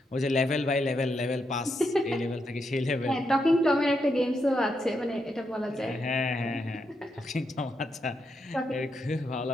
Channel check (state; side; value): normal; both; correlation 0.82